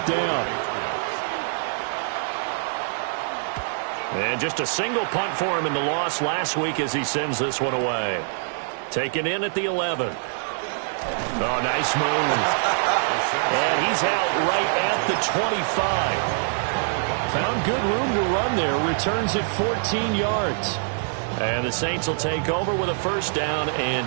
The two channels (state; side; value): silent; left; digital silence